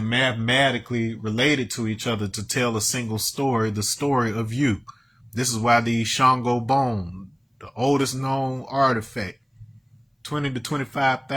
mathematically related to each other to tell a single story, the story of you. This is why the Shango bone, the oldest known artifact, 20 to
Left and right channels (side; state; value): both; identical; correlation 1.00